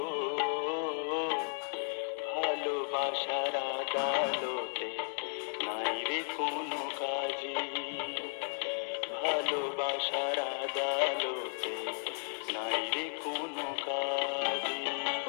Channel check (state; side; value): silent; right; 55 dB below the other